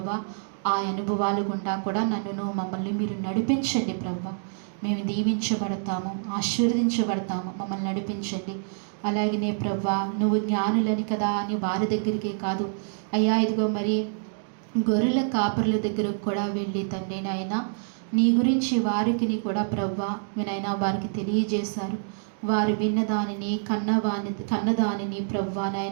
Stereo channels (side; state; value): left; silent; digital silence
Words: ఆ అనుభవాలు గుండా కూడా నన్ను మమ్మల్ని మీరు నడిపించండి ప్రభా. మేము దీవించబడతాము, ఆశీర్వదించబడతాము, మమ్మల్ని నడిపించండి. అలాగనే ప్రభా నువ్వు జ్ఞానులని కదా అని వారి దగ్గరికే కాదు అయ్యా, ఇదిగో మరి గొర్రెల కాపర్ల దగ్గరకు కూడా వెళ్ళి తండ్రి నాయన నీ గురించి వారికి కూడా ప్రభా వినైనా వారికి తెలియజేశారు. వారు విన్నదానిని కన్నదానిని ప్రభా